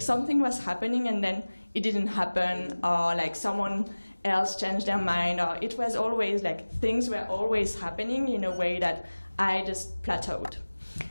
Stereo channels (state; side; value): inverted; both; correlation -1.00